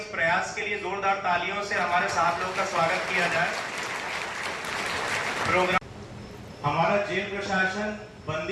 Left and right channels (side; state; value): both; identical; correlation 1.00